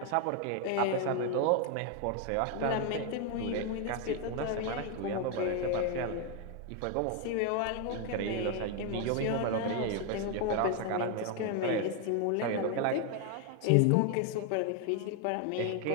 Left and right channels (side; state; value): both; different; correlation 0.01